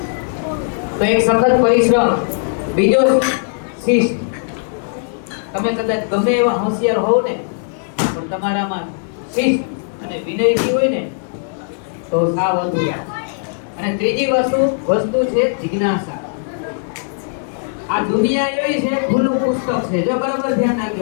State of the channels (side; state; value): right; silent; digital silence